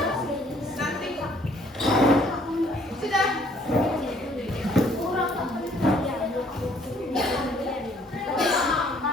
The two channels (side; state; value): both; normal; correlation 0.62